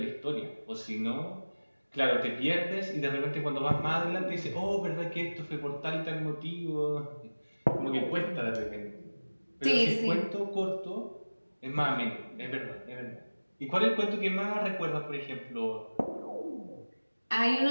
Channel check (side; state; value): both; inverted; correlation -1.00